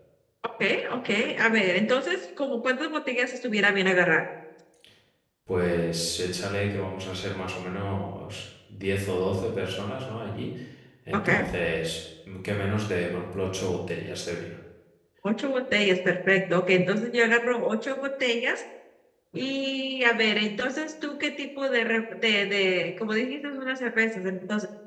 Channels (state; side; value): identical; both; correlation 1.00